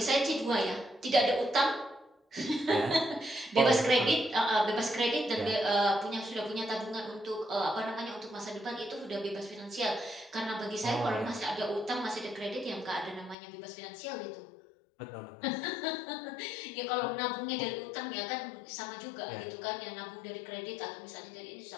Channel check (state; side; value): drops out; right; at 13.4 s